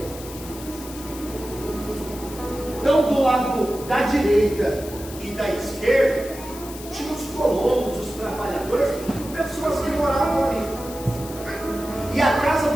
Então, do lado da direita e da esquerda, tinha os colonos, os trabalhadores, pessoas que moravam ali. E a casa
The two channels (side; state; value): left; noise; hiss, 15 dB below the sound